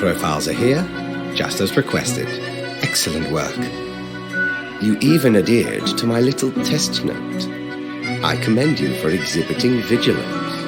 are here, just as requested. Excellent work. You even adhered to my little test note. I commend you for exhibiting vigilance.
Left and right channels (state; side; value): identical; both; correlation 1.00